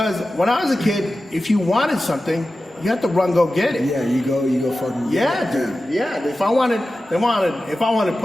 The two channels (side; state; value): both; normal; correlation 0.94